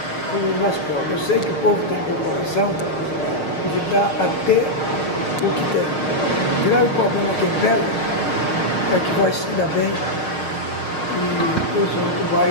para o nosso povo. Eu sei que o povo tem corporação de dar até o que tem. O grave problema que pega é que vai se dar bem e os outros vai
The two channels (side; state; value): right; late; 6.0 ms